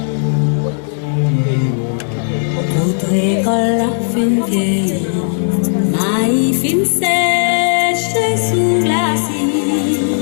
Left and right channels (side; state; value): right; silent; digital silence